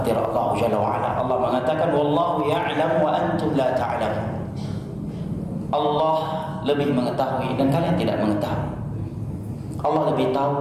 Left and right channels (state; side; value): identical; both; correlation 1.00